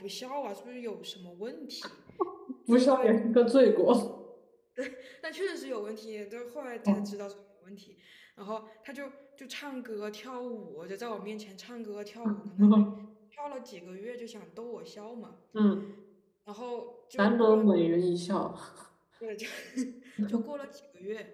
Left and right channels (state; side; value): identical; both; correlation 1.00